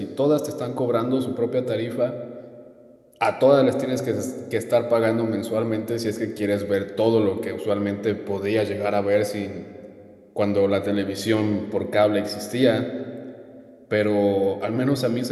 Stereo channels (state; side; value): identical; both; correlation 1.00